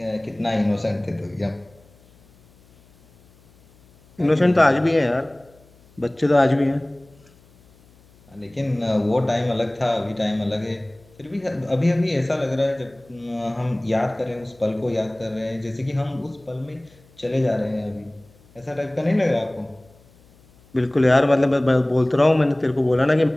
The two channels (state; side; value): noise; left; hum, 29 dB below the sound